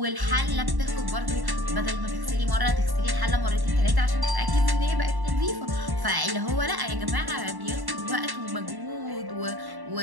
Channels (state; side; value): late; left; 1.1 ms